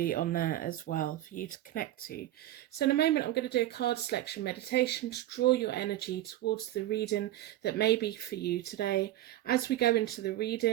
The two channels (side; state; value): left; quieter; 14.3 dB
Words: on there as well for you to connect to. So in a moment I'm going to do a card selection meditation to draw your energy towards the reading that may be for you today. As we go into the